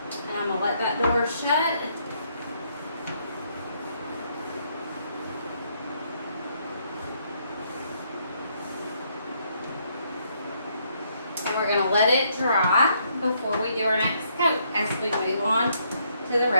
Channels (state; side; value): inverted; both; correlation -0.71